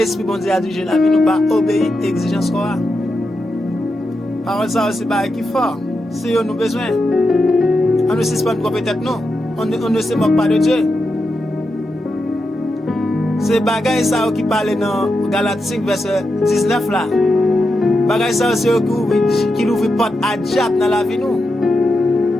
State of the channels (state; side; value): normal; both; correlation 0.87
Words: bon Dieu a dirigé la vie, nous pas obéir à l'exigence qu'on a. Parole ça aussi, c'est qui fort. C'est eux nous besoin. On ne suspend pas peut-être non. On ne se moque pas de Dieu. C'est bagay ça qui parle dans Galates 5 verset 19 là. Bagay ça c'est qui ouvre porte à diable dans la vie nous.